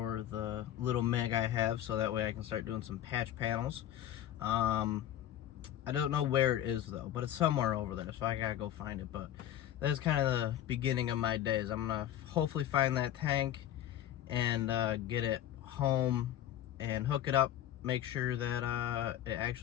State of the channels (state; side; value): quieter; right; 11.7 dB